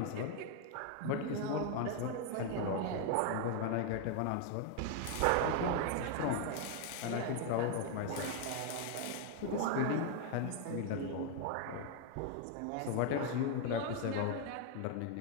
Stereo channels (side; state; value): both; different; correlation 0.00